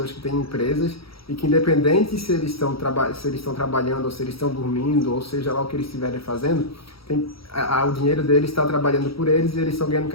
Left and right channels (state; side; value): late; right; 0.75 ms